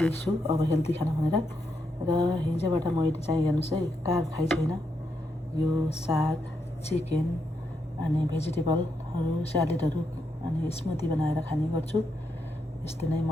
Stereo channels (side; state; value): both; normal; correlation 0.81